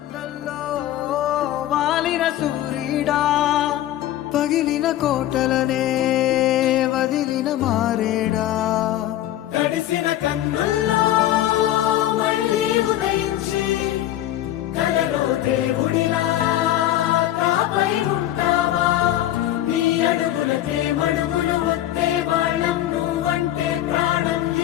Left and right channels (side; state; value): right; quieter; 13.2 dB